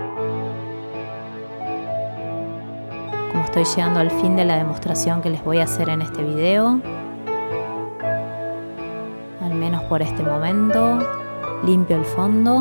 como estoy llegando al fin de la demostración que les voy a hacer en este video. Al menos por este momento. Limpio el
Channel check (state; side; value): inverted; both; correlation -1.00